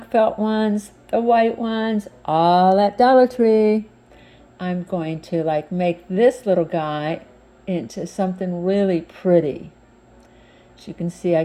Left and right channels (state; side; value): identical; both; correlation 1.00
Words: felt ones, the white ones, all at Dollar Tree. I'm going to make this little guy into something really pretty. As you can see, I